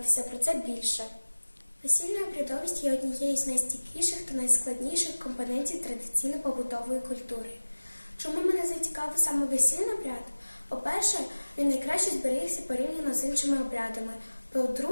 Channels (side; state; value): both; inverted; correlation -1.00